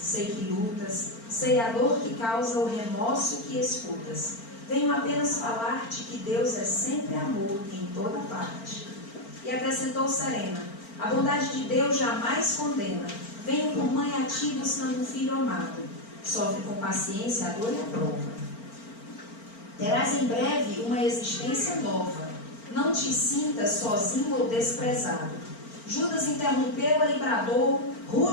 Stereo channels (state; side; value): late; right; 4.4 ms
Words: que lutas, sei a dor que causa o remorso que escutas. Venho apenas falar-te que Deus é sempre amor em toda parte. E acrescentou serena: a bondade de Deus jamais condena. Venho por mãe a ti buscando um filho amado. Sofre com paciência a dor e a prova. Terás em breve uma existência nova. Não te sintas sozinho ou desprezado. Judas interrompeu-a e bradou,